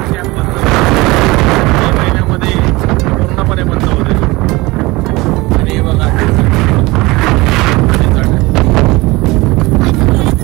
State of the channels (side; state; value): left; quieter; 21.9 dB